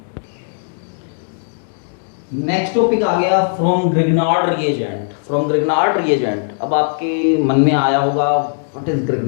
Next topic आ गया from Grignard reagent. From Grignard reagent, अब आपके मन में आया होगा what is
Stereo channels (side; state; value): right; silent; digital silence